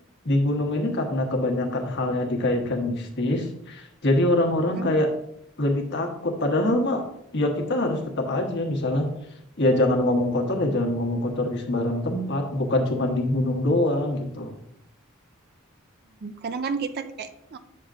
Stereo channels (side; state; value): both; normal; correlation 0.44